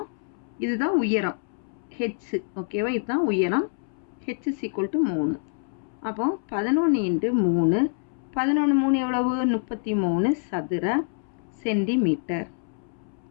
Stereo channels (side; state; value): right; silent; 61 dB below the other